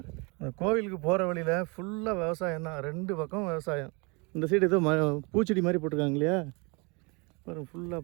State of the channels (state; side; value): quieter; left; 30.1 dB